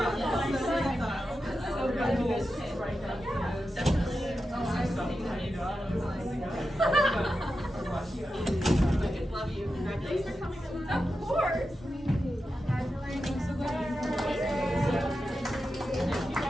love you. Congratulations for coming. Of course.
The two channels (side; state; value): both; normal; correlation 0.90